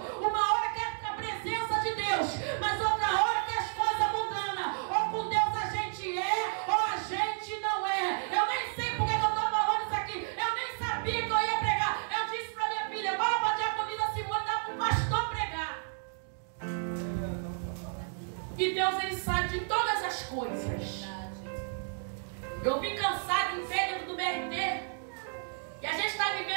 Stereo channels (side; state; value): left; silent; 57 dB below the other